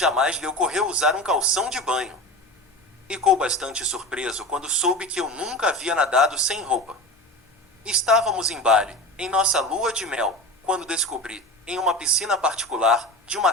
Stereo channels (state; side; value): normal; both; correlation 0.29